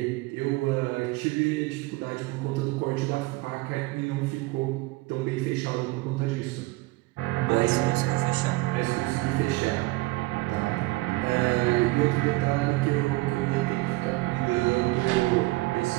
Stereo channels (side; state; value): left; quieter; 21.9 dB